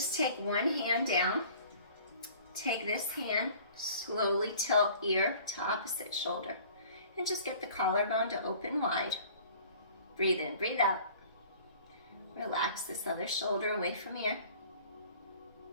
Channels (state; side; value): inverted; both; correlation -0.49